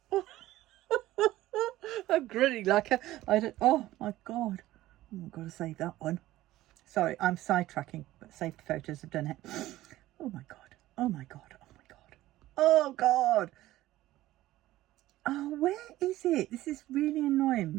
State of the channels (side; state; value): left; quieter; 15.7 dB